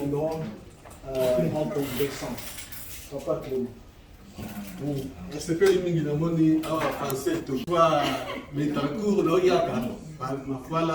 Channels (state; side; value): identical; both; correlation 1.00